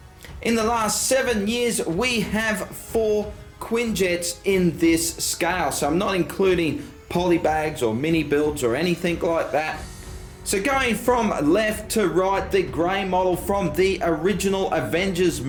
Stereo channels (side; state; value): both; identical; correlation 1.00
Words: In the last 7 years, we have 4 Quinjets in this scale. So I'm not including polybags or mini builds or anything like that. So going from left to right, the grey model from the original Avengers